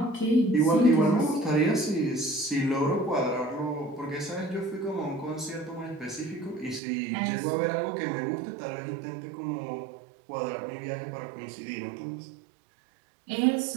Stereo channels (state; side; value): drops out; left; at 6.8 s